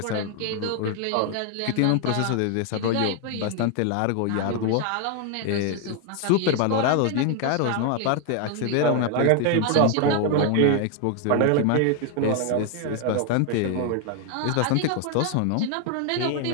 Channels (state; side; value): different; both; correlation 0.01